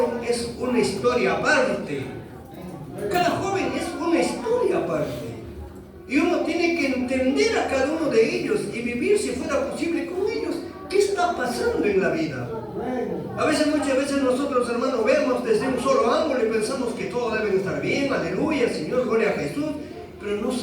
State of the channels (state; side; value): identical; both; correlation 1.00